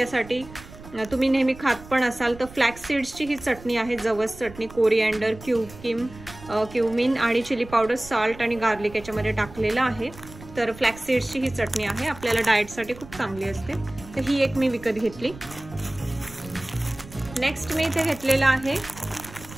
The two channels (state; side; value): noise; right; rumble, 17 dB below the sound